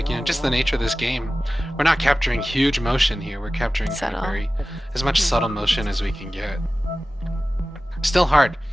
just the nature of this game, we're not capturing huge motion here. We're capturing kind of as much subtle motion as we can get. Still hard.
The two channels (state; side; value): normal; both; correlation 0.96